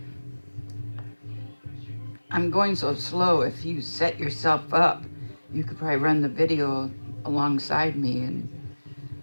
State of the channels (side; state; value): both; inverted; correlation -1.00